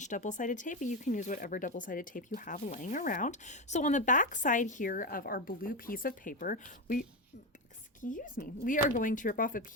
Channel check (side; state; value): both; normal; correlation 0.14